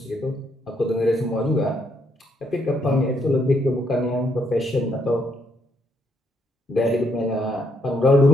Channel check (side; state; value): both; normal; correlation 0.74